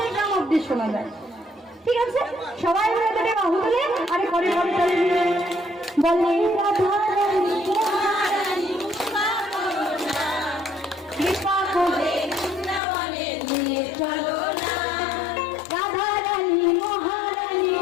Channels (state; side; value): drops out; right; at 12.8 s